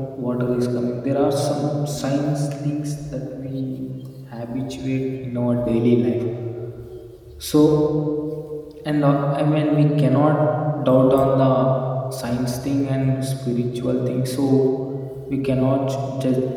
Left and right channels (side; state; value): both; identical; correlation 1.00